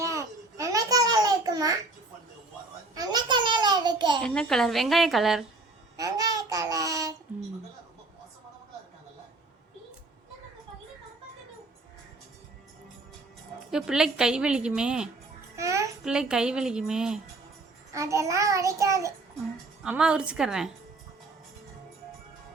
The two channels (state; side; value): quieter; left; 3.2 dB